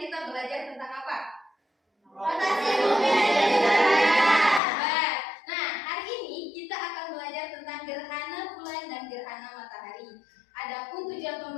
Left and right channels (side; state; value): right; drops out; at 4.6 s